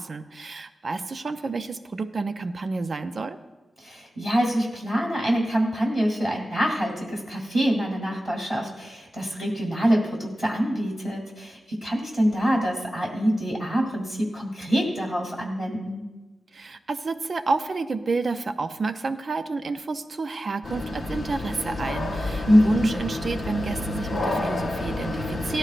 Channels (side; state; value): both; normal; correlation 0.93